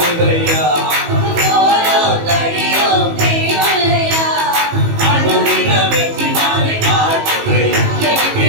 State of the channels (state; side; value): late; left; 19 ms